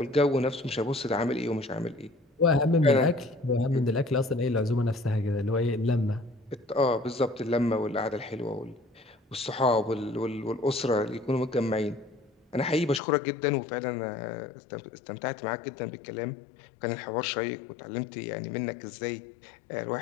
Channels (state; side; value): drops out; right; at 13.0 s